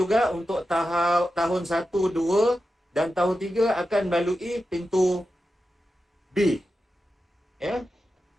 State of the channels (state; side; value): normal; both; correlation 0.91